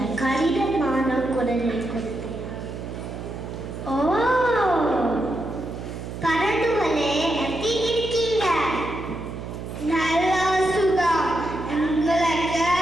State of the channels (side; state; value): right; noise; hum, 9 dB below the sound